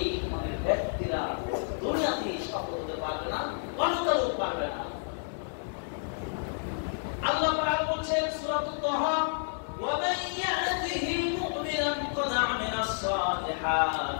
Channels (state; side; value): silent; right; digital silence